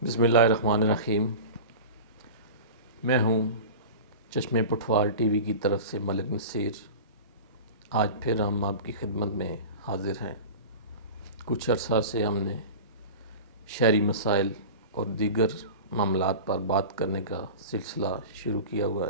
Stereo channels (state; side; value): inverted; both; correlation -0.32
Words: بسم اللہ الرحمن الرحیم۔ میں ہوں چشمہ پٹھوار ٹی وی کی طرف سے ملک نصیر۔ آج پھر ہم آپ کی خدمت میں حاضر ہیں۔ کچھ عرصہ سے ہم نے شہری مسائل اور دیگر معاملات پر بات کرنے کا سلسلہ شروع کیا ہوا